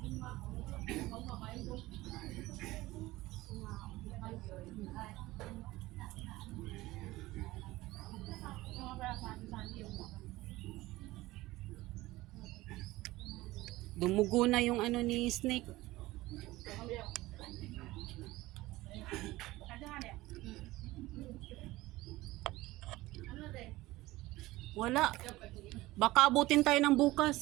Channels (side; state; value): left; quieter; 18.6 dB